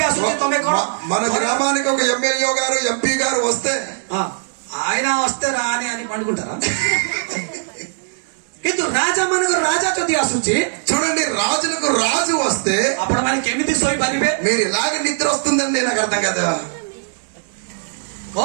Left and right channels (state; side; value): silent; left; digital silence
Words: ଆସୁଛି ତମେ କଣ మన గ్రామానికి ఒక ఎమ్మెల్యే గారు ఎంపీ గారు వస్తే ఆయన వస్తే రాని అని పండుకుంటారా କିନ୍ତୁ ରାଜା ମାନଙ୍କର ରାଜା ଯଦି ଆସୁଛି చూడండి రాజులకు రాజు వస్తే ଆପଣ ମାନେ କେମିତି ଶୋଇପାରିବେ మీరు ఇలాగ నిద్ర వస్తుందని నాకు అర్థం కదా